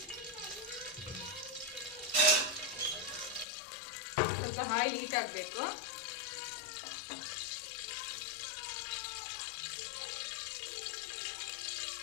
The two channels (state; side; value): drops out; right; at 3.5 s